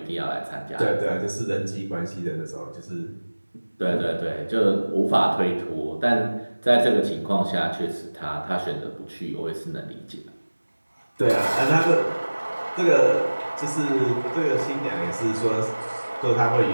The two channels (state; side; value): inverted; both; correlation -1.00